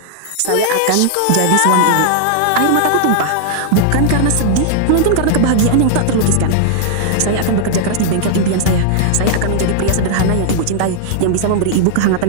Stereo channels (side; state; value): both; different; correlation -0.01